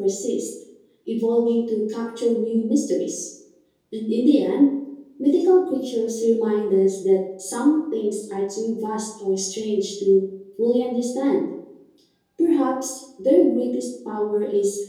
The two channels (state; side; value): identical; both; correlation 1.00